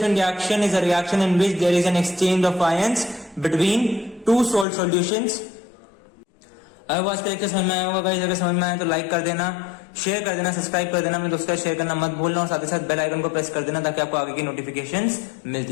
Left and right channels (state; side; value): drops out; right; at 4.7 s